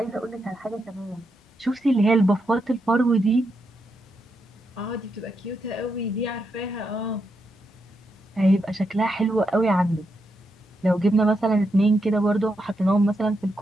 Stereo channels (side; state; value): both; normal; correlation 0.83